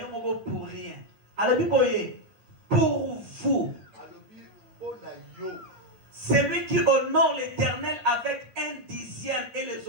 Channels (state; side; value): late; left; 8.9 ms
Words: moko pour rien. Alors biboye pour vous, celui qui honore l'Éternel avec 1/10 et les